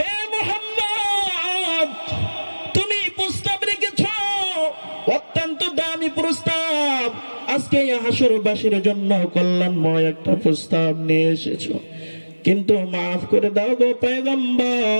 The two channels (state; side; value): inverted; both; correlation -1.00